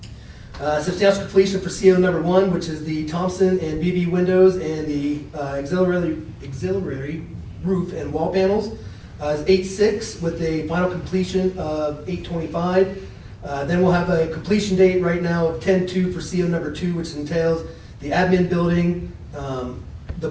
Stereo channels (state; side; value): identical; both; correlation 1.00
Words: Substantial completion for CO number 1, which is the Thompson and BV windows and the auxiliary roof and wall panels, is 8/6 with a final completion of 8/25. Then we'll have a completion date right now of 10/2 for CO number 2, which entails the admin building, the